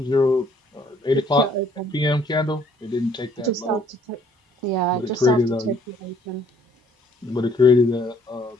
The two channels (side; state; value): both; normal; correlation 0.62